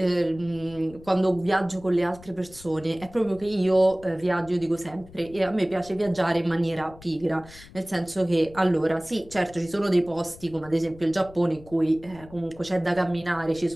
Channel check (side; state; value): left; noise; rumble, 20 dB below the sound